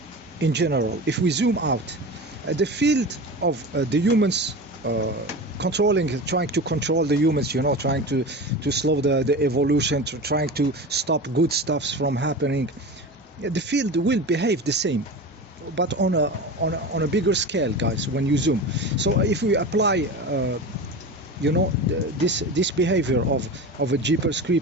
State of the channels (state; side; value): normal; both; correlation 0.29